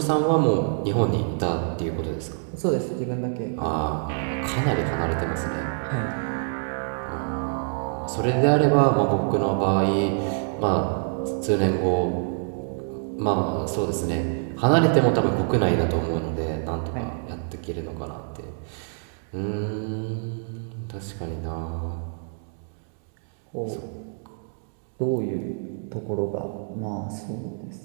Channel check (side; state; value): left; silent; digital silence